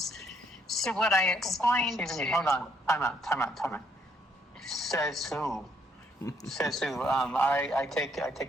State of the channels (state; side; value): normal; both; correlation 0.69